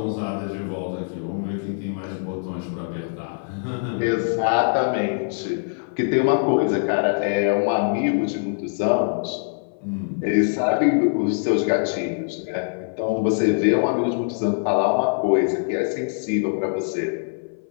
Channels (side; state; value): right; silent; 59 dB below the other